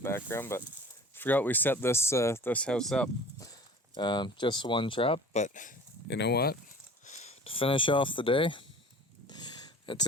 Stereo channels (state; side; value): normal; both; correlation 0.44